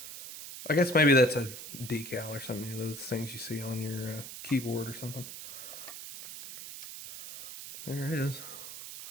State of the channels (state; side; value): noise; right; hiss, 11 dB below the sound